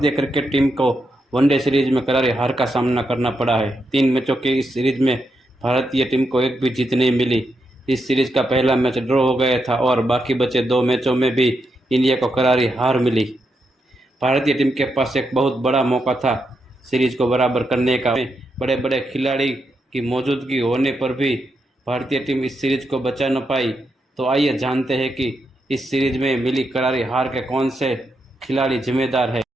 क्रिकेट टीम को वनडे सीरीज में करारी हार का सामना करना पड़ा है। 3 मैचों की इस सीरीज में भारतीय टीम को एक भी जीत नहीं मिली। इस सीरीज का पहला मैच ड्रॉ हो गया था और बाकी बचे 2 मैचों में भी इंडिया को करारी हार मिली। भारतीय टीम के पास एक बहुत बड़ा मौका था सीरीज को बराबर करने का। बड़े बड़े खिलाड़ी की मौजूदगी होने पर भी भारतीय टीम इस सीरीज को बचा न पाई। तो आइए जानते हैं कि इस सीरीज में मिली करारी हार के कौन से खिलाड़ी जिम्मेदार है।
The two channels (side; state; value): both; normal; correlation 0.83